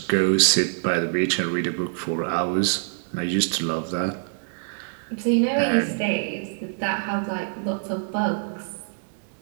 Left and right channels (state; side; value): silent; left; 62 dB below the other